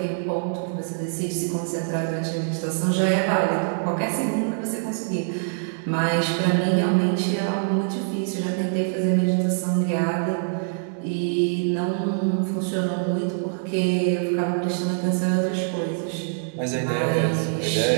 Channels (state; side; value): silent; left; digital silence